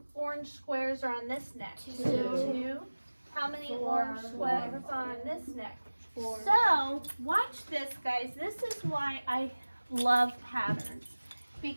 orange squares are on this neck? 2. How many orange squares are on this neck? 4. So, watch this, guys. This is why I love patterns.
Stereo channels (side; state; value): both; inverted; correlation -1.00